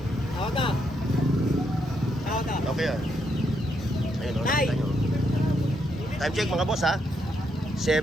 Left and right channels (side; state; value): both; normal; correlation 0.78